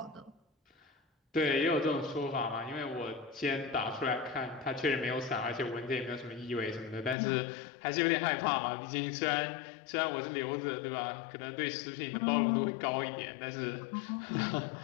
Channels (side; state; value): right; drops out; at 7.2 s